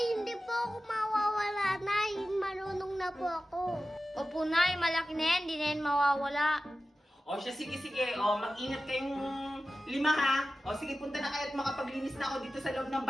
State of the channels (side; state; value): both; normal; correlation 0.94